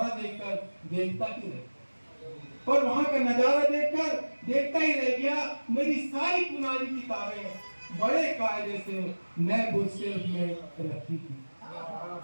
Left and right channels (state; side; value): inverted; both; correlation -1.00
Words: देखता ही रह गया। मेरी सारी पुरानी किताबें बड़े कायदे से नए बुक शेल्फ में रखी थी।